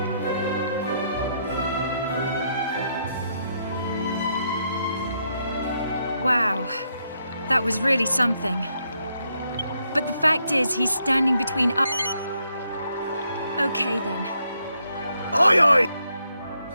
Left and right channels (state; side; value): inverted; both; correlation -0.77